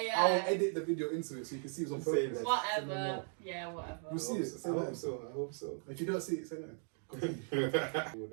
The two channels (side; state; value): left; silent; 53 dB below the other